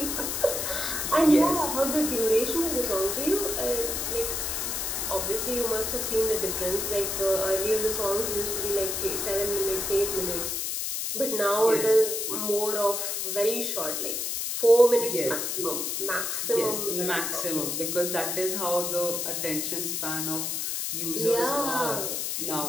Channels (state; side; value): noise; left; hiss, 1 dB below the sound